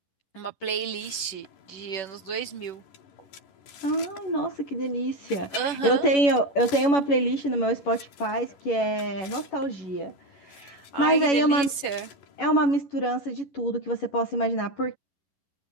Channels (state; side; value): late; right; 11 ms